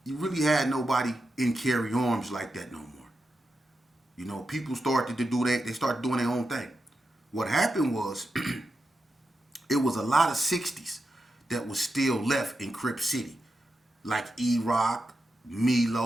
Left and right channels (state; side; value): normal; both; correlation 0.88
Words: had nobody in Carey Arms like that no more. You know, people started to do that. They started doing their own thing. What happened was, it was a lot of 60's that was still left in Crip City. Like E-Rock,